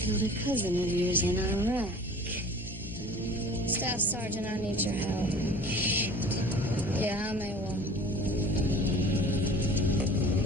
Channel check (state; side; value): normal; both; correlation 0.44